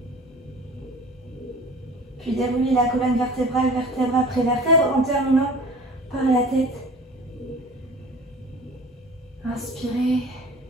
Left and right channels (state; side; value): normal; both; correlation 0.42